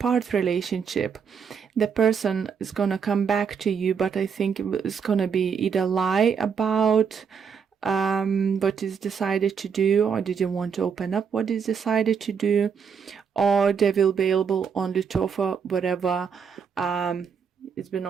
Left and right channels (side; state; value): left; quieter; 6.6 dB